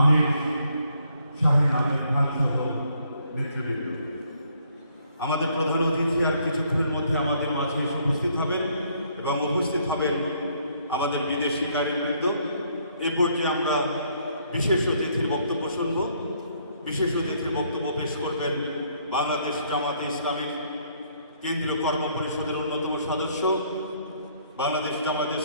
শাহিন আহমেদ খান সহ নেতৃবৃন্দ, আমাদের প্রধান অতিথি আর কিছুক্ষণের মধ্যে আমাদের মাঝে এসে উপস্থিত হবেন এবং উপস্থিত হবেন আমাদের বিদেশি কারিবৃন্দ। এ পর্যায়ে আমরা বিশেষ অতিথির বক্তব্য শুনব। বিশেষ অতিথির বক্তব্য পেশ করবেন বাংলাদেশ জামাতে ইসলামীর কেন্দ্রীয় কর্ম পরিষদের অন্যতম সদস্য, বাংলাদেশ জামাতে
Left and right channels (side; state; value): both; inverted; correlation -0.67